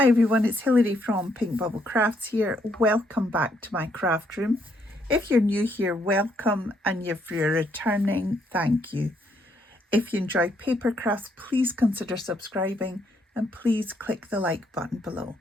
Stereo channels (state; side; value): normal; both; correlation 0.73